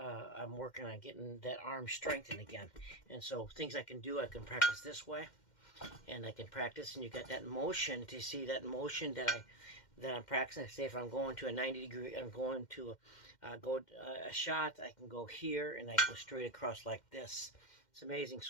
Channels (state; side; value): late; right; 2.1 ms